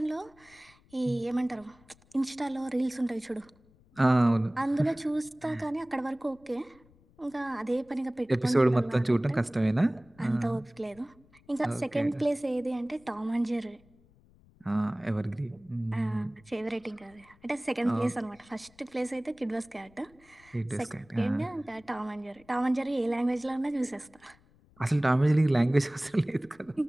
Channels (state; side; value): noise; left; rumble, 29 dB below the sound